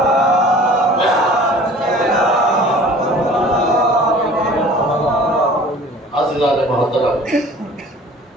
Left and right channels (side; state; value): both; normal; correlation 0.46